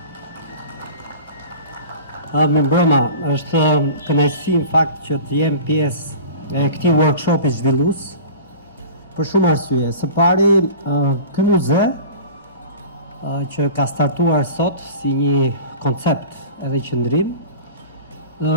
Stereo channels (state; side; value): inverted; both; correlation -0.39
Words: Mirëmbrëma, është kënaqësi në fakt që të jem pjesë e këtij workshopi zhvillues për shumë arsye. Së pari, ky muze që ka startuar sot si një koncept edhe qëndrim,